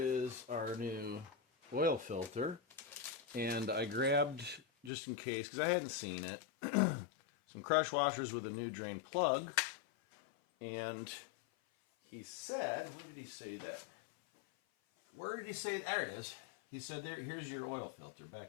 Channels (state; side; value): drops out; right; at 4.9 s